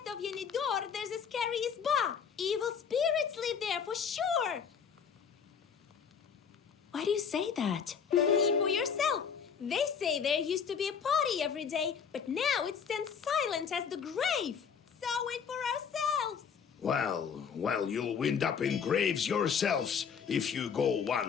of Yenidor, there's a scary isba. Evil spirits live there for sure! Why do you say that? See for yourself. They say there used to be a party every day, but now it stands silent as the grave. Saw it for ourselves. Well, you'll wind up in graves yourselves if you go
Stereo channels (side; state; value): right; quieter; 6.8 dB